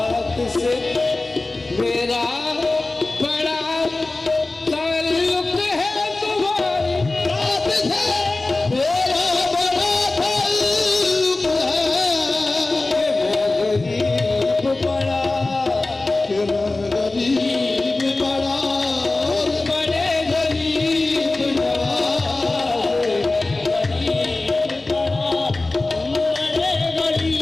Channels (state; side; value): quieter; right; 3.1 dB